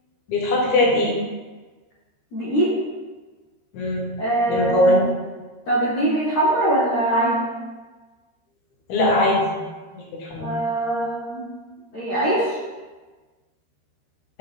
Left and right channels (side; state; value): right; late; 13 ms